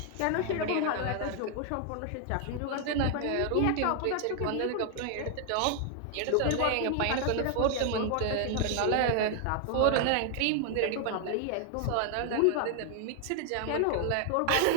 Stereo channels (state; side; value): different; both; correlation 0.00